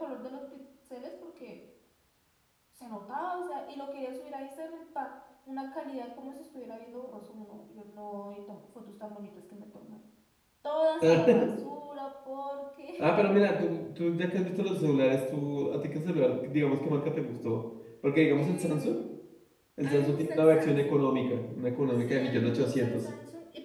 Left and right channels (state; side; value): identical; both; correlation 1.00